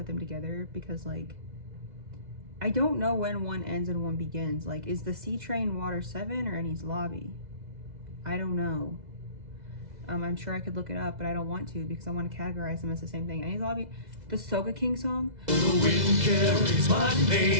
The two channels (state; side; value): late; left; 2.0 ms